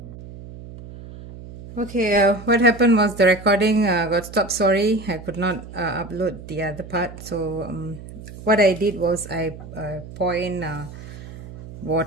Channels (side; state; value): right; noise; hum, 14 dB below the sound